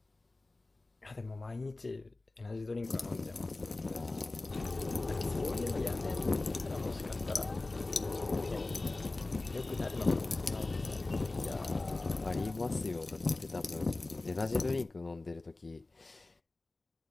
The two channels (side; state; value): right; quieter; 3.1 dB